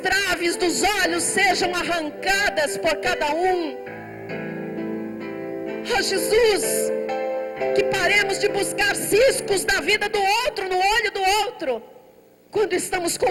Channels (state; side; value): identical; both; correlation 1.00